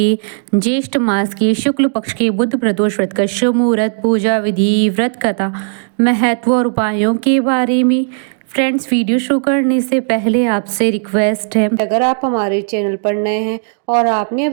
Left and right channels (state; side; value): silent; left; digital silence